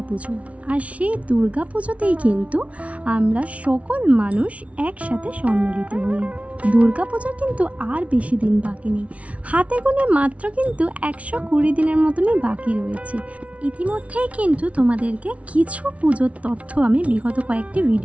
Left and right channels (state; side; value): late; left; 0.065 ms